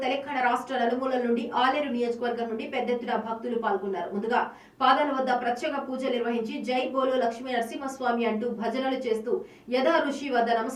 తెలంగాణ రాష్ట్ర నలుమూలల నుండి ఆలేరు నియోజకవర్గం నుండి పెద్ద ఎత్తున భక్తులు పాల్గొన్నారు. ముందుగా పాదాల వద్ద ప్రత్యేక పూజలు నిర్వహించి జై బోలో లక్ష్మీ నరసింహస్వామి అంటూ భజనలు చేస్తూ యథా ఋషి వద్ద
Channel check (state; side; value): identical; both; correlation 1.00